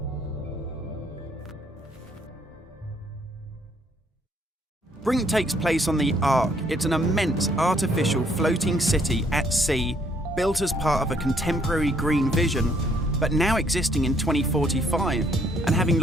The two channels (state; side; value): normal; both; correlation 0.67